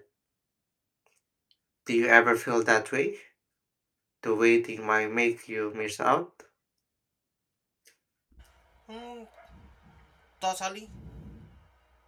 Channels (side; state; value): both; identical; correlation 1.00